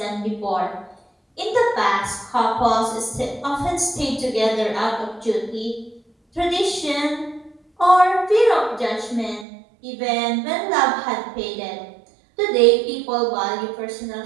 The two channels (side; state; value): left; drops out; at 9.5 s